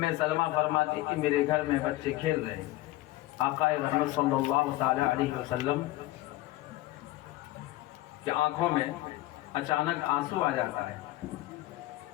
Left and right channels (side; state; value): right; quieter; 17.2 dB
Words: سلمہ فرماتی کہ میرے گھر میں بچے کھیل رہے ہیں، آقا رحمت صلی اللہ تعالی علیہ وسلم کی آنکھوں میں اچانک آنسو آ جاتا ہے،